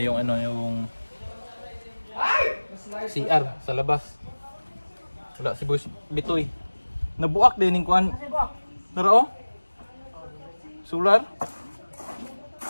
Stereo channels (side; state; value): both; inverted; correlation -1.00